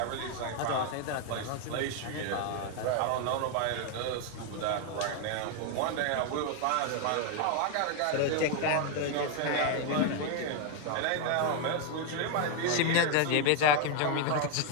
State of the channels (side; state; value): both; different; correlation 0.01